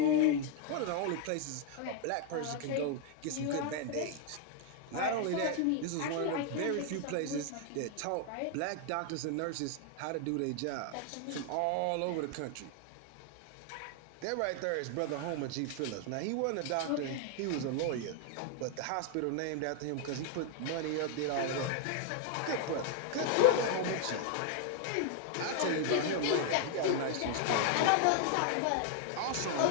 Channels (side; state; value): both; different; correlation 0.00